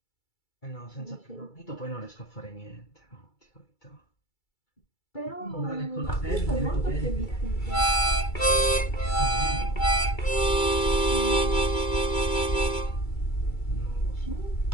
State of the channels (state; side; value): late; right; 2.3 ms